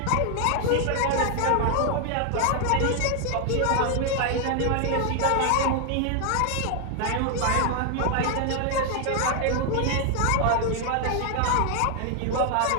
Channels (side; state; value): both; different; correlation 0.00